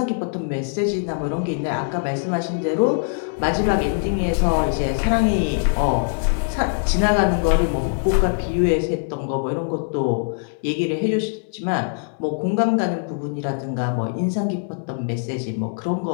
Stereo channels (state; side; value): silent; right; digital silence